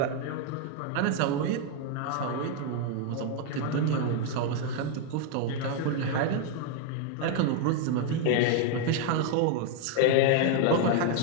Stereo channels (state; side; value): different; both; correlation 0.01